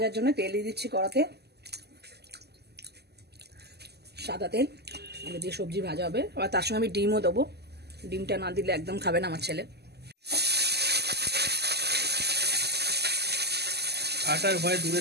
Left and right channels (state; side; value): late; left; 0.48 ms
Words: জন্য তেল দিয়ে দিচ্ছি কড়াতে সাদা তেল এটা দিয়ে সবজি ভাজা হবে আবার তার সঙ্গে আমি ডিমও দেবো ডিমটা না দিলে একদম খাবে না আমার ছেলে